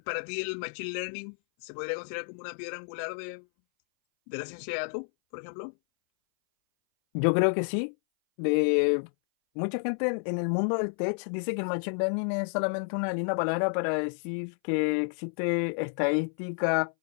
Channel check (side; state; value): right; silent; 58 dB below the other